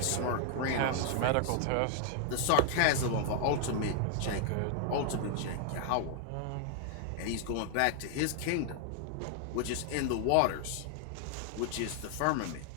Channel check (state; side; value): different; both; correlation 0.00